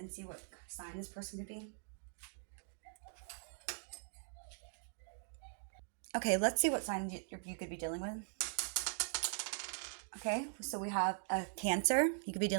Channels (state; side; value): silent; left; digital silence